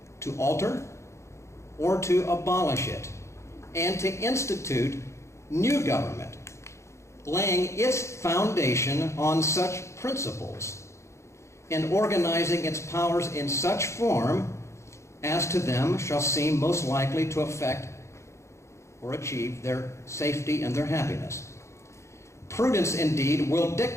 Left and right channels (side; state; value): right; late; 0.14 ms